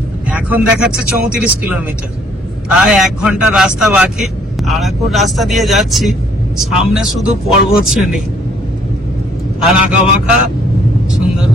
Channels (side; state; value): both; normal; correlation 0.63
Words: এখন দেখাচ্ছে 34 কিলোমিটার। প্রায় 1 ঘন্টা রাস্তা বাকি। আরাকুর রাস্তা দিয়ে যাচ্ছি, সামনে শুধু পর্বত শ্রেণী আর আঁকা বাঁকা সুন্দর